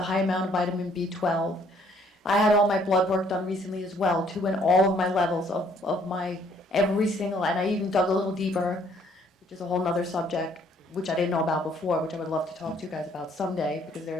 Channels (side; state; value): both; normal; correlation 0.63